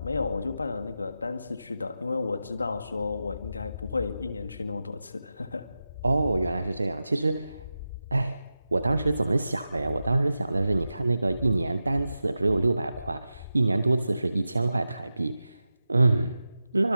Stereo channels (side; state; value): both; inverted; correlation -0.92